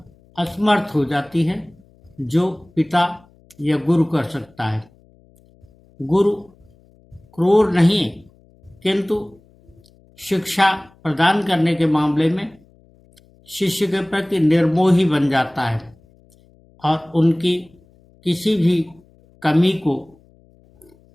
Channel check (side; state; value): left; noise; hum, 30 dB below the sound